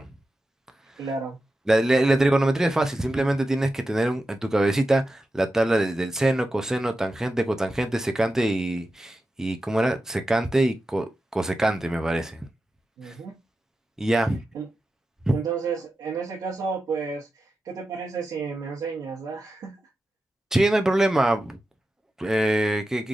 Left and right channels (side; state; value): both; normal; correlation 0.91